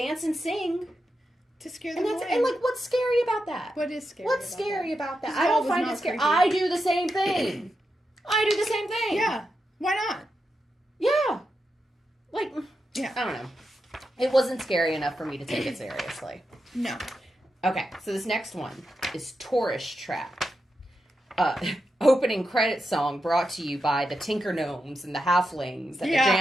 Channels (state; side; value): normal; both; correlation 0.87